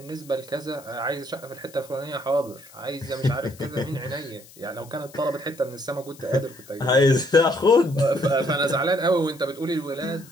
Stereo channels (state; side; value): noise; left; hiss, 22 dB below the sound